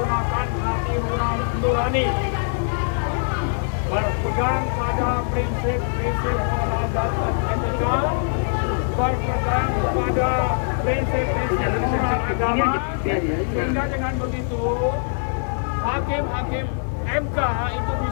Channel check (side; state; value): right; silent; digital silence